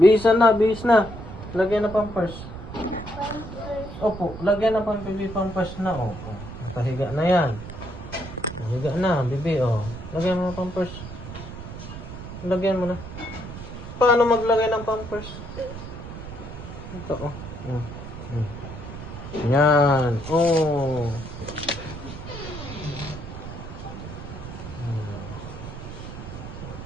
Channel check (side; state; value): right; noise; rumble, 11 dB below the sound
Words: na. Bihis na. Lagyan na pampers. Opo, lagyan na pang baby pampers na. Oh, oh. Nakahiga na yan. Nakahiga na, baby. Oh. Lagyan mo na pampers. Lagyan mo na. Paano maglagay ng pampers? Ito, oh. Yan. Oh.